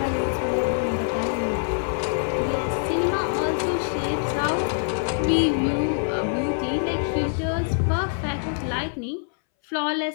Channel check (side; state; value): right; silent; 62 dB below the other